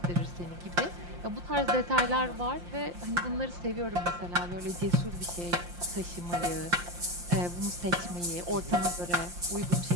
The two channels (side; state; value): left; late; 5.7 ms